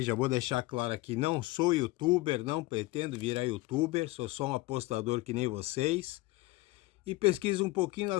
já vou deixar claro aqui, não sou youtuber, não pretendo virar youtuber, sou só um apostador que nem vocês. E pesquiso um pouquinho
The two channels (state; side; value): quieter; right; 19.9 dB